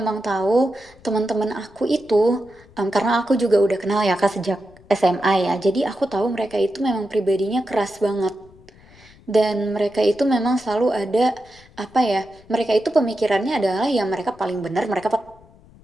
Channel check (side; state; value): left; noise; rumble, 26 dB below the sound